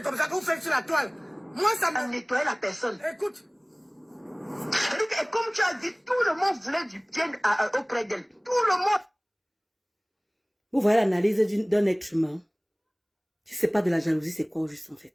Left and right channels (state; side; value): identical; both; correlation 1.00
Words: comme ça que vous faites sur la toile. Moi, ça m'a... nettoyer la personne. Écoute. Et comme tu as dit, tout le monde voulait du bien auprès d'elle. Tout le monde. Vous voyez l'analyse d'un être humain. Si ce n'est pas de la jalousie, c'est quoi juste en